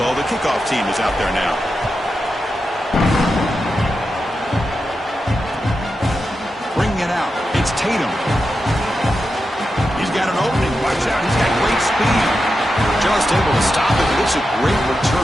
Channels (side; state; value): both; normal; correlation 0.89